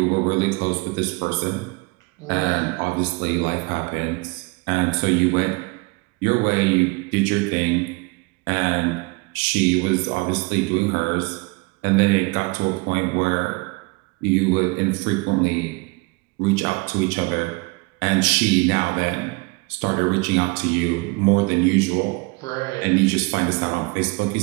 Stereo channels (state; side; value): quieter; left; 27.5 dB